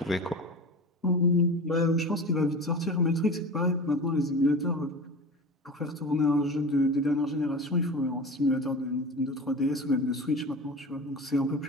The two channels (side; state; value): both; normal; correlation 0.32